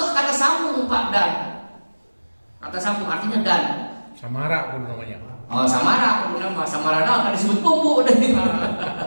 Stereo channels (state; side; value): inverted; both; correlation -1.00